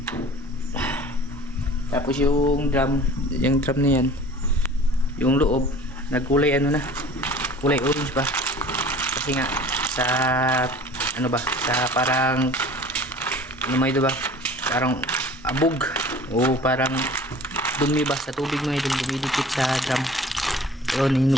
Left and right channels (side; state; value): both; normal; correlation 0.45